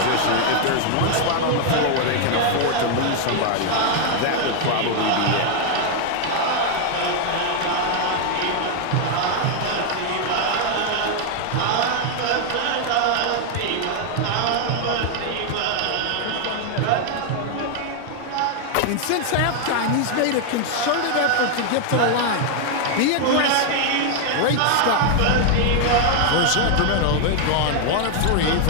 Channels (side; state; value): both; different; correlation 0.00